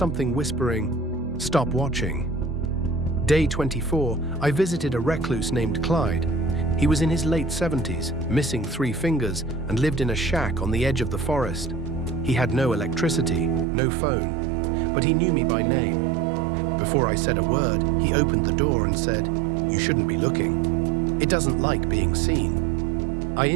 whispering, "Stop watching." Day 24, I visited a recluse named Clyde. He was in his late 70s, missing 3 fingers, and lived in a shack on the edge of the forest. He had no electricity, no phone, but he knew me by name. Before I said a word, he opened the door and said, "You shouldn't be looking. It doesn't like being seen." I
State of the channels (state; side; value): drops out; left; at 13.7 s